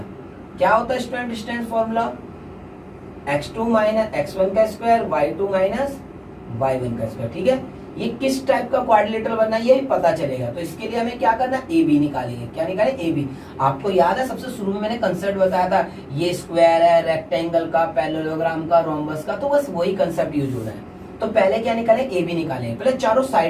क्या होता है student distance formula, x2 minus x1 का स्क्वायर, y2 माइनस y1 का स्क्वायर, ठीक है। ये किस टाइप का क्वाड्रिलेटरल बनना है ये भी पता चलेगा। तो इसके लिए हमें क्या करना है, AB निकालेंगे। क्या निकालें, AB। आपको याद है सबसे शुरू में मैंने कंसेप्ट बताया था, ये स्क्वायर है, रेक्टेंगल का, पैरेललोग्राम का, रोम्बस का, तो बस वही कंसेप्ट यूज हो रहा है। तो पहले क्या निकालें, AB निकालें। पहले चारों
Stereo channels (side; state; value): both; identical; correlation 1.00